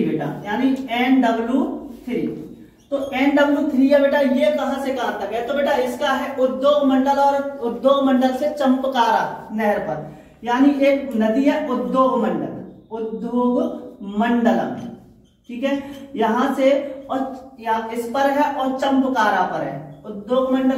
बेटा, यानी NW3। तो NW3 है बेटा, ये कहां से कहां तक है, तो बेटा इसका है उद्योग मंडल, और उद्योग मंडल से चंपकारा नहर पर, यानी एक नदी है उद्योग मंडलम, ठीक है, यहां से और इस पर है और चंपकारा पर है, उद्योग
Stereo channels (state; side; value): identical; both; correlation 1.00